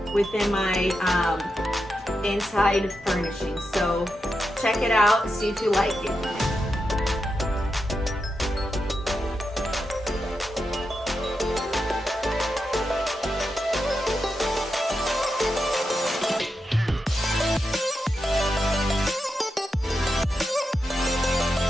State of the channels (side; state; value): both; normal; correlation 0.87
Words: within my inside furnishing. So check it out, see if you like it.